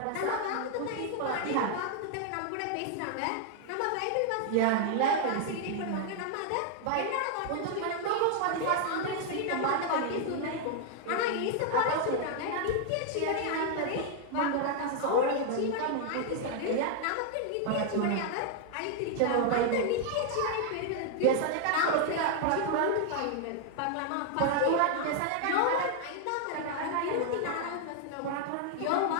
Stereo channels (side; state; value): both; different; correlation 0.00